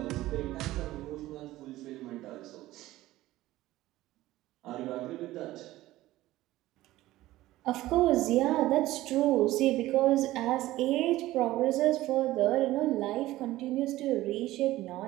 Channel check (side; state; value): left; quieter; 16.4 dB